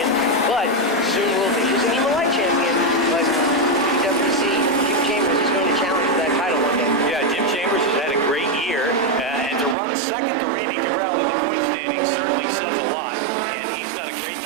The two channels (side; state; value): left; drops out; at 9.8 s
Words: but soon will be. He's a Nema Light champion, but you definitely see Jim Chambers is going to challenge for that title one day. Yeah, Jim Chambers has had a great year, and to run second to Randy Cabral in the point standing certainly says a lot, and he's done a great